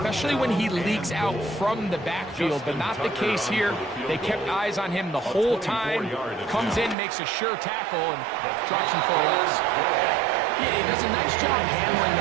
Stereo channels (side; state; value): left; drops out; at 7.0 s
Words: when he leaks out from the backfield, but not the case here. They kept eyes on him the whole time. Comes in, makes a sure tackle, and drops him for a loss. Yeah, he does a nice job handling